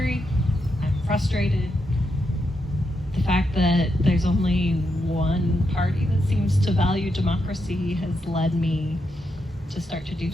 I'm frustrated. The fact that there's only one party that seems to value democracy has led me to start to do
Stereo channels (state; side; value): normal; both; correlation 0.83